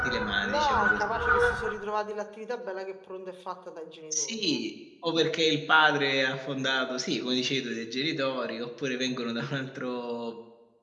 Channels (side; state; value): both; identical; correlation 1.00